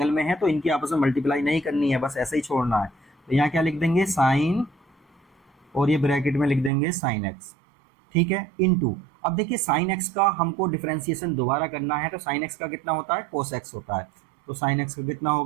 में है, तो इनकी आपस में मल्टीप्लाई नहीं करनी है, बस ऐसे ही छोड़ना है। तो यहाँ क्या लिख देंगे, साइन, और ये ब्रैकेट में लिख देंगे साइन एक्स, ठीक है, इनटू। अब देखिए साइन एक्स का हमको डिफरेंशिएशन दोबारा करना है, तो साइन एक्स का कितना होता है, कोस एक्स होता है, तो साइन एक्स का कितना हो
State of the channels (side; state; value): left; drops out; at 6.7 s